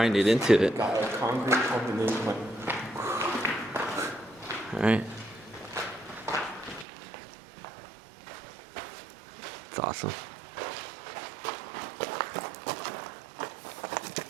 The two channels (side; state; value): left; drops out; at 6.9 s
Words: it into it. Got a concrete combination. Alright. It's awesome.